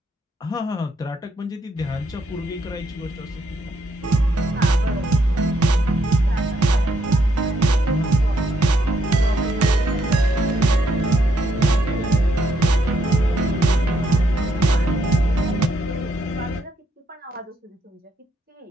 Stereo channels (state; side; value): normal; both; correlation 0.74